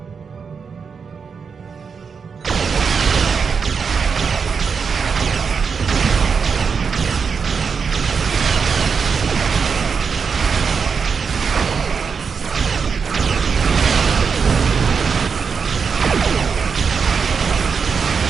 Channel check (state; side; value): quieter; left; 5.8 dB